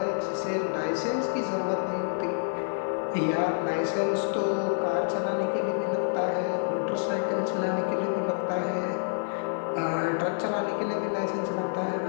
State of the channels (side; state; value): right; silent; digital silence